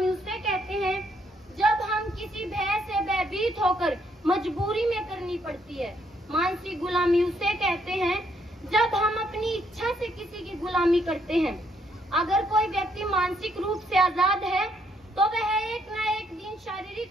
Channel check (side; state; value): both; normal; correlation 0.71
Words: उसे कहते हैं जब हम किसी भय से भयभीत होकर मजबूरी में करनी पड़ती है। मानसिक गुलामी उसे कहते हैं जब हम अपनी इच्छा से किसी की गुलामी करते हैं। अगर कोई व्यक्ति मानसिक रूप से आजाद है तो वह एक न एक दिन